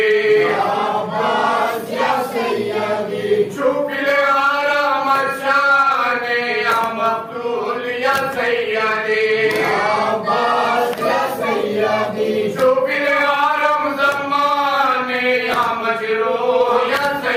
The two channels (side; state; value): both; identical; correlation 1.00